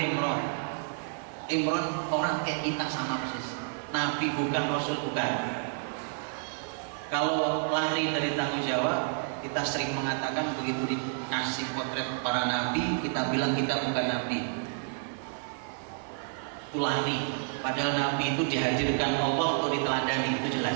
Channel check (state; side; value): silent; left; digital silence